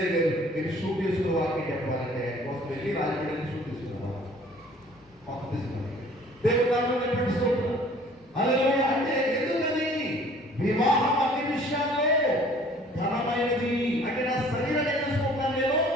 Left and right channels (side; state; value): both; normal; correlation 0.53